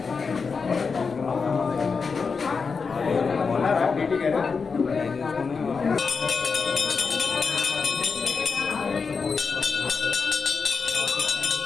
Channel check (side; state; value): right; quieter; 5.1 dB